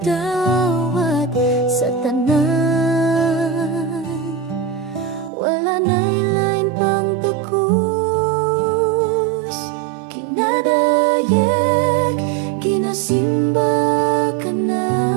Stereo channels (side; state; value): left; drops out; at 5.3 s